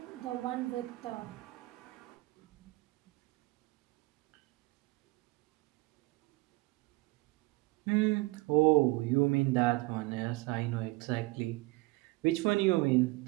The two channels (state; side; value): quieter; left; 22.8 dB